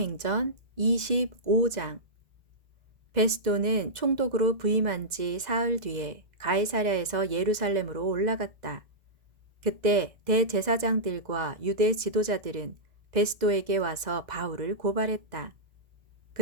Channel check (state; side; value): late; left; 2.0 ms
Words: 25장. 베스도는 총독으로 부임한 지 사흘 뒤에 가이사랴에서 예루살렘으로 올라갔다. 그때 대제사장들과 유대 지도자들은 베스도에게 와서 바울을 고발했다.